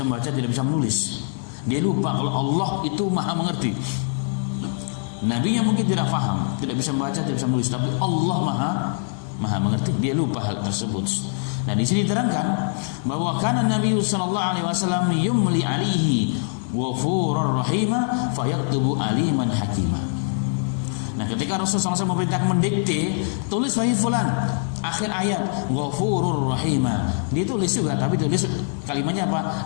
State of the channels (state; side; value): silent; right; digital silence